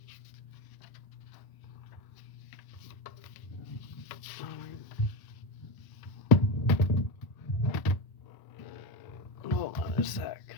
Hold on a sec.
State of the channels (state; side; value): late; right; 1.0 ms